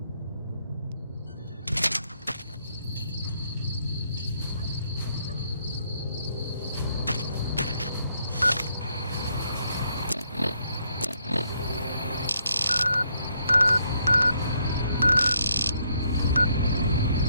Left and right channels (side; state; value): both; inverted; correlation -0.73